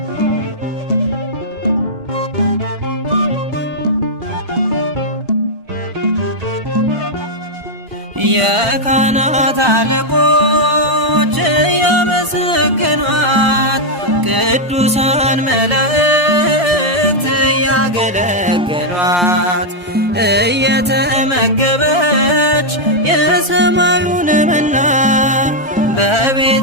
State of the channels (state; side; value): normal; both; correlation -0.02